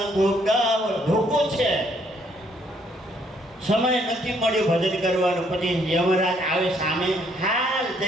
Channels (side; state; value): both; normal; correlation 0.68